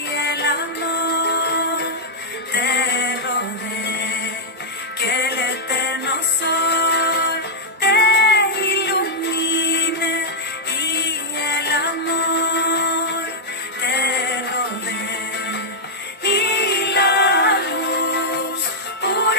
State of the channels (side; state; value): both; normal; correlation -0.06